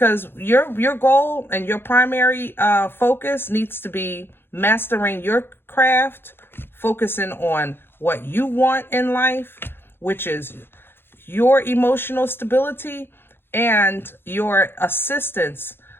your goal and your primary focus needs to be mastering your craft, focusing on what you want in life, which is your emotional stability and your assistance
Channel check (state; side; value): late; right; 0.10 ms